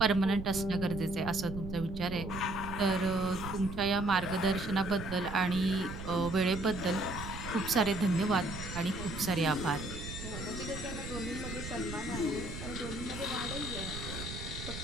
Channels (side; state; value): right; noise; rumble, 8 dB below the sound